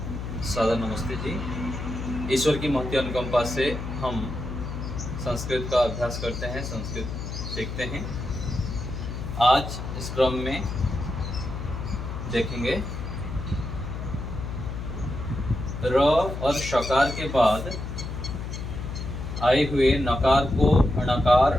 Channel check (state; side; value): noise; left; hum, 6 dB below the sound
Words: सादर नमस्ते जी। ईश्वर की महती अनुकंपा से हम संस्कृत का अभ्यास करते हैं, संस्कृत सीखते हैं। आज इस क्रम में देखेंगे र और शकार के बाद आए हुए नकार को अणकार